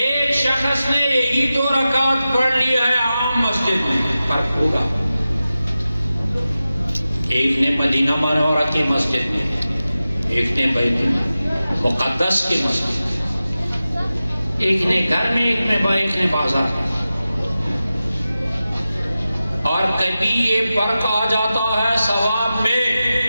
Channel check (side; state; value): both; inverted; correlation -0.94